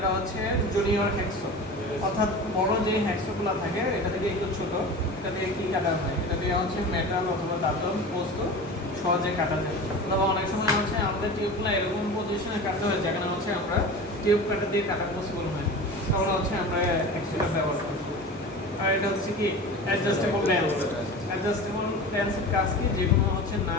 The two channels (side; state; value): both; normal; correlation 0.33